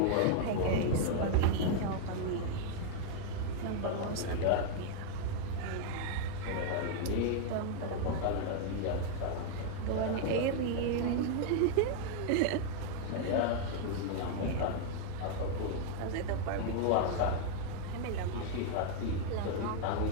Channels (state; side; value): different; both; correlation 0.00